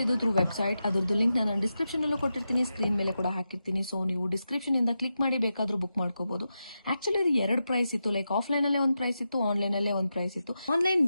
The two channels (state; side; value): inverted; both; correlation -0.89